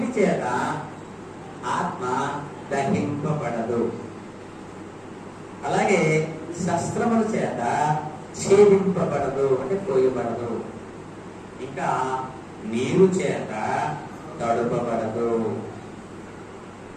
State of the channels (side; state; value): both; identical; correlation 1.00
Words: చేత ఆత్మ దహింపబడదు, అలాగే శస్త్రముల చేత ఛేదింపబడదు అంటే కోయబడదు, ఇంకా నీరు చేత తడుపబడదు.